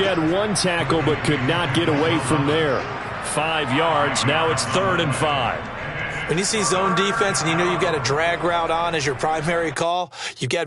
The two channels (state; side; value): identical; both; correlation 1.00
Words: 1 tackle but could not get away from there. 5 yards. Now it's 3rd and 5. When you see zone defense and you know you've got a drag route on as your primary call, you've got